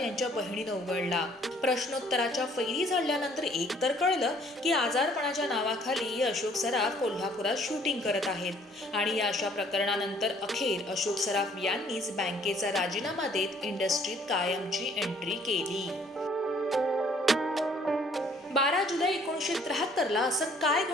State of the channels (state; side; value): normal; both; correlation 0.60